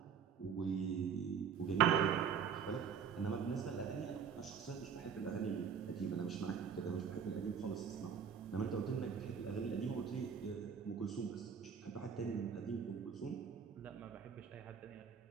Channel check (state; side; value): quieter; left; 7.1 dB